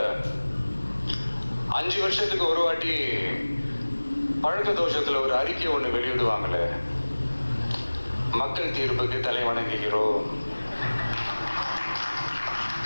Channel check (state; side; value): inverted; both; correlation -1.00